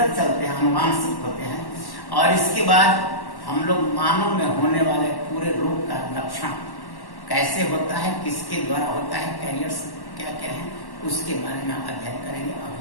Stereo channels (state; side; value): late; right; 1.1 ms